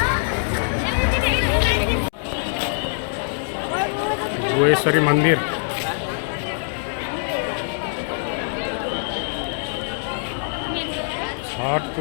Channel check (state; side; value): silent; right; digital silence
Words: गुहेश्वरी मन्दिर छठ